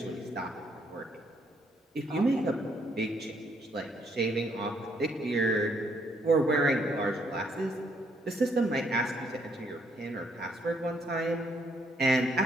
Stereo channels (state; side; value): normal; both; correlation 0.71